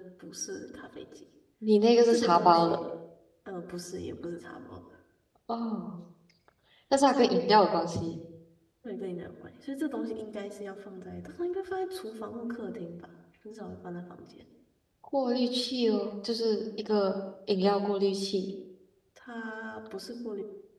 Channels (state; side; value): identical; both; correlation 1.00